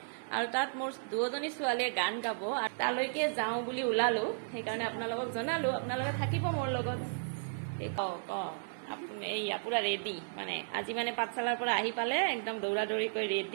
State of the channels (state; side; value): silent; left; digital silence